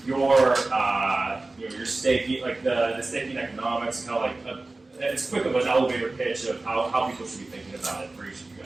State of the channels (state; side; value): quieter; left; 3.2 dB